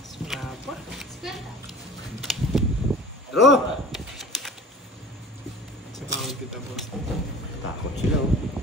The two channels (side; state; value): both; normal; correlation 0.41